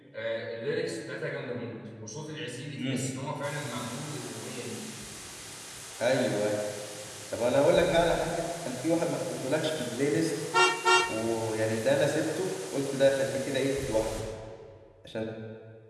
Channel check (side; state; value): both; identical; correlation 1.00